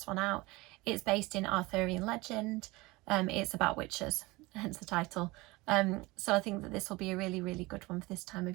one out. It's based in Arthurian legend. It's about witches, hence the title. So I think that this will be a really, really good one for this time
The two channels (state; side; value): quieter; left; 22.3 dB